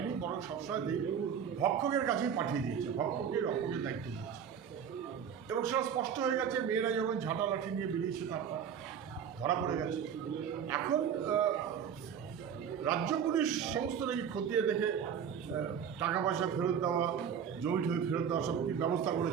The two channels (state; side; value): quieter; left; 7.9 dB